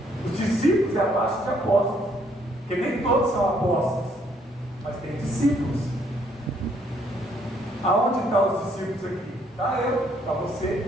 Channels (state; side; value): normal; both; correlation 0.68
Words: Os discípulos é abaixo de apóstolos, porque nem todos são apóstolos, mas tem discípulos. Aonde estão os discípulos aqui? Está eu, está